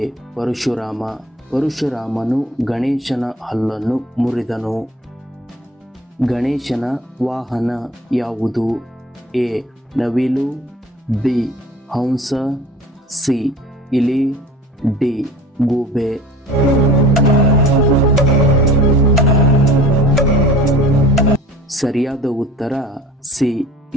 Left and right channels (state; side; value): normal; both; correlation 0.43